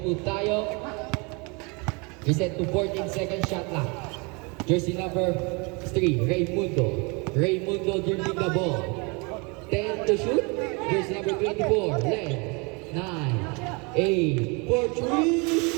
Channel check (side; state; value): left; quieter; 30.2 dB